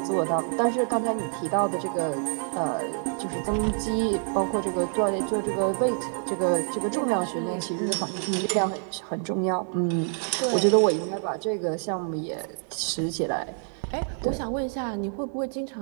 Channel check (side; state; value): left; silent; 57 dB below the other